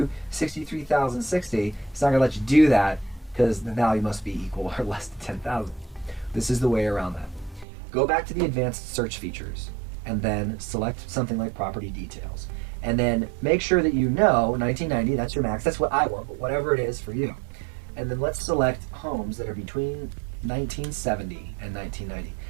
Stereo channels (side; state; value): left; drops out; at 7.7 s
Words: 63,060. It's not going to let you do that because the value must be equal or less than 10,000. This is the way around that. Go back to the advanced search features and then select something like property details. And then make sure that you know 1990, that's your max. That's what I want, but whatever it is for you. And then let's select homes that are between 1970 and 1990.